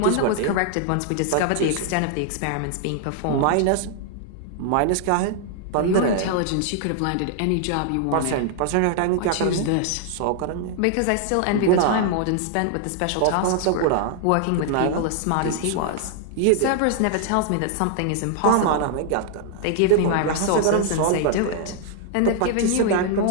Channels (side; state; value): both; different; correlation 0.00